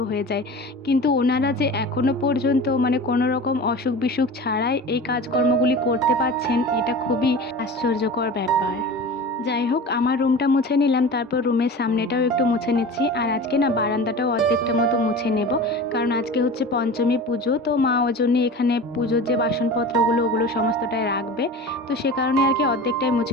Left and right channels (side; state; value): both; normal; correlation 0.34